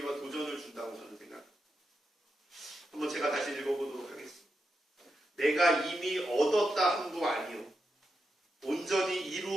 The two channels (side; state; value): both; normal; correlation 0.86